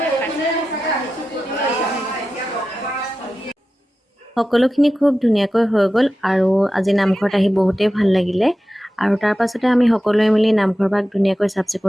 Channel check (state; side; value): normal; both; correlation 0.93